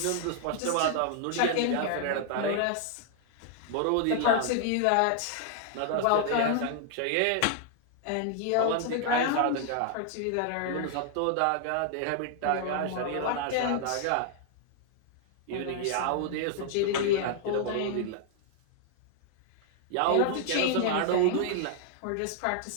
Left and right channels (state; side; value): different; both; correlation 0.00